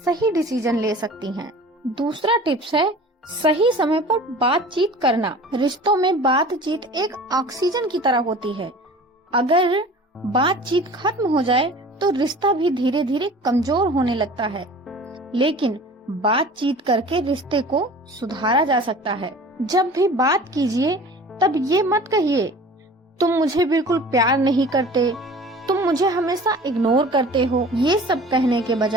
डिसीजन ले सकती हैं। दूसरा टिप्स है सही समय पर बातचीत करना। रिश्तों में बातचीत एक ऑक्सीजन की तरह होती है। अगर बातचीत खत्म हो जाए तो रिश्ता भी धीरे धीरे कमजोर होने लगता है, लेकिन बातचीत करके रिश्ते को सुधारा जा सकता है। जब भी बात कीजिए तब ये मत कहिए तुम मुझे बिल्कुल प्यार नहीं करते, तुम मुझे हमेशा इग्नोर करते हो। ये सब कहने के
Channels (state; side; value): normal; both; correlation 0.43